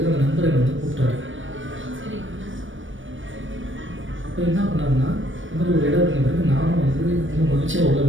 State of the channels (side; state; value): left; late; 0.56 ms